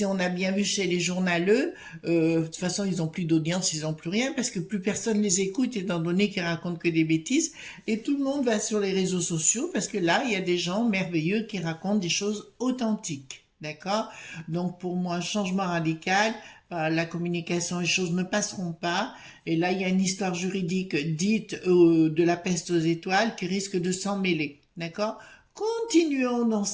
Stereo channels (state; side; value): identical; both; correlation 1.00